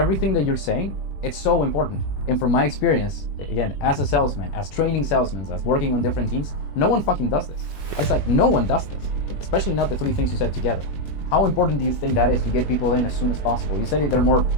that you're saying, it's so important. And from my experience, again, as a salesman, as training salesmen, as working on different teams, no one fucking does this. It's like no one does this, especially not the three things you said together. How important do you think that is to get people in as soon as possible? You said they're more,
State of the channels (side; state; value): right; late; 21 ms